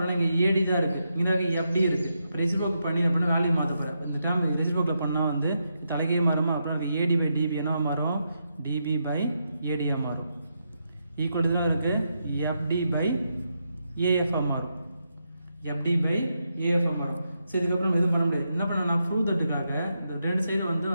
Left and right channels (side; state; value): both; inverted; correlation -0.83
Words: இங்கே ஏடி தான் இருக்குது. இங்கே எஃப்டி இருக்குது. இப்போ ரெசிப்ரோக்கல் பண்ணி அப்படின்னா வேல்யூ மாற்ற போகிறேன். இந்த டைம் ரெசிப்ரோக்கல் பண்ணால் வந்து தலைக்கே மாறுமா. அப்புறம் ஏடி பை டிபி என்னவா மாறும் டிபி பை ஏடியாக மாறும். ஈக்குவல் தான் இருக்குது எஃப்டி பை ஏஎஃப்ஆ மாறும். எஃப்டி பை ஏஎஃப்ஆ மாறும். ஸோ இதுக்கப்புறம் எதுவும் பண்ண முடியாது. என்ன பண்ண நான் ப்ரூவ் தட்டுக்காக இந்த ரெண்டு சைடு வந்து